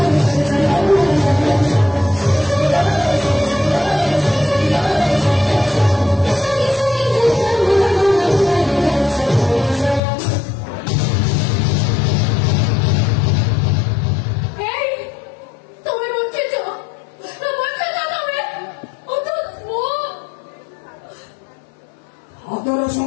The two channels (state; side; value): drops out; right; at 10.0 s